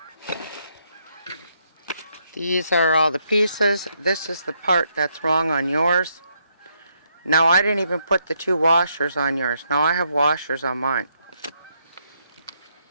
These are all the pieces. This is the part that's wrong on yours. Now, I didn't even put the 2 washers on yours. Now, I have washers on mine.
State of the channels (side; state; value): both; inverted; correlation -0.76